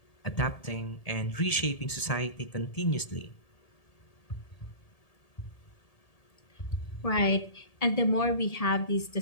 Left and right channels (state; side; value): late; right; 1.8 ms